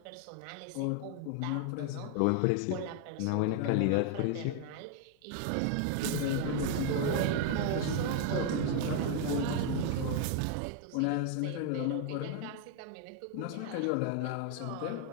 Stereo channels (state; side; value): different; both; correlation 0.00